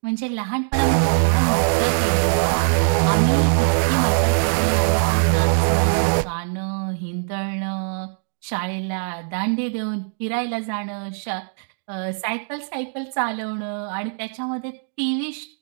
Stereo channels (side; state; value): left; silent; 61 dB below the other